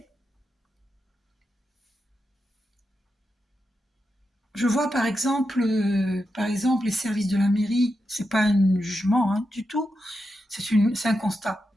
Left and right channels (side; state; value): both; normal; correlation 0.88